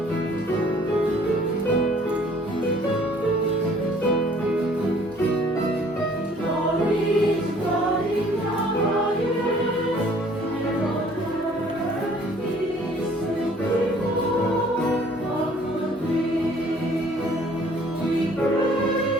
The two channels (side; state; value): both; normal; correlation 0.56